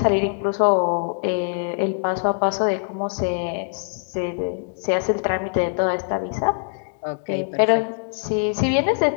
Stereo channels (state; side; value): silent; right; digital silence